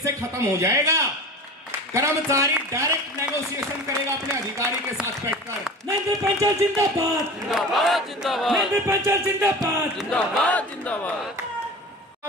से खत्म हो जाएगा। कर्मचारी डायरेक्ट नेगोशिएशन करेगा अपने अधिकारी के साथ बैठकर। नरेंद्र पंचाल जिंदाबाद, जिंदाबाद जिंदाबाद, नरेंद्र पंचाल जिंदाबाद, जिंदाबाद जिंदाबाद।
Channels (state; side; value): normal; both; correlation 0.35